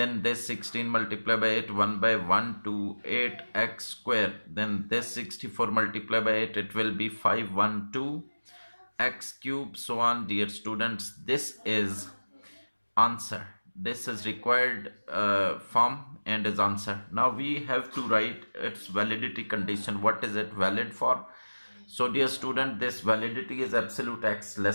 this 16 multiplied by 8, 1 by 1 to 8x square. Then this 64 multiplied by 8, it will be 512 x cube, so on. Dear students, this is answer. This is required form and is answer. Now we have to write its validity condition. What is it valid for? So, dear student, this validity is absolute x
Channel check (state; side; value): inverted; both; correlation -1.00